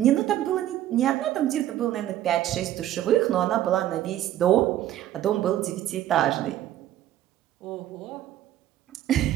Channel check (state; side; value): quieter; left; 12.6 dB